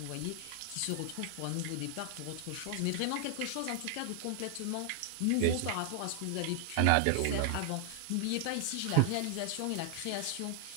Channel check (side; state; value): both; different; correlation 0.00